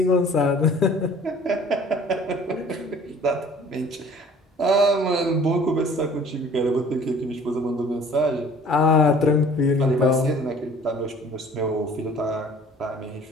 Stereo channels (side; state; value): both; normal; correlation 0.51